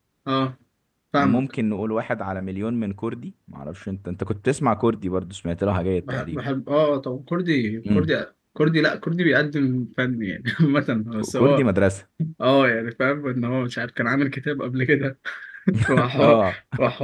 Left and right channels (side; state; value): both; identical; correlation 1.00